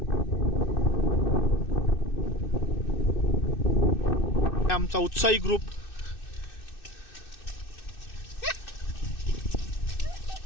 आमचा उत्साही ग्रुप.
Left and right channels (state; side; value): late; right; 2.6 ms